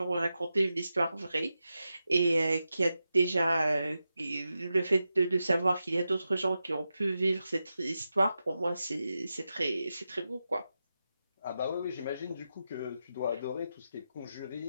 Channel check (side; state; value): both; inverted; correlation -0.90